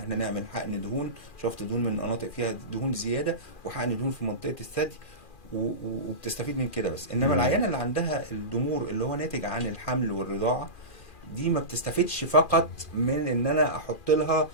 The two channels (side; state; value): right; late; 2.4 ms